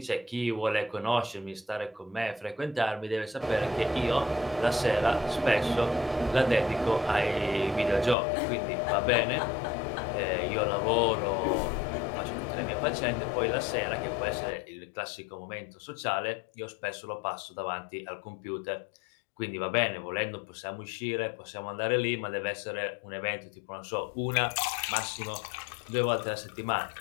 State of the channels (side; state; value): right; drops out; at 8.2 s